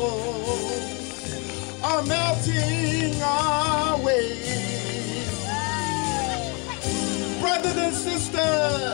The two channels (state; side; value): quieter; right; 32.8 dB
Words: are melting away. Brothers and